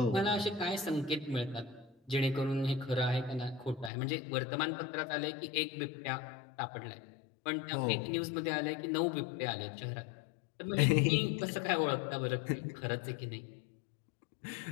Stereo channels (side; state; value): right; drops out; at 3.9 s